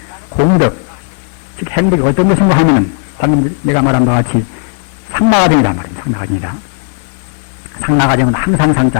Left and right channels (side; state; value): right; silent; 72 dB below the other